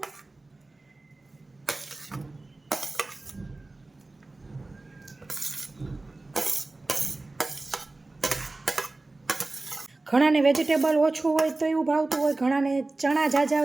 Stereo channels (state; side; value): quieter; left; 3.1 dB